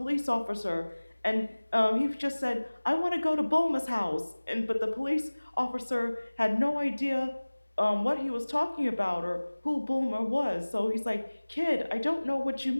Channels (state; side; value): inverted; both; correlation -1.00